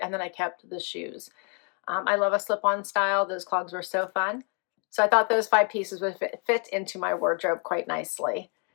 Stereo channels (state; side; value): quieter; right; 38.6 dB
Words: And then I kept the shoes. I love a slip-on style. Those clogs were so fun. So I thought those 5 pieces would fit into my wardrobe quite nicely.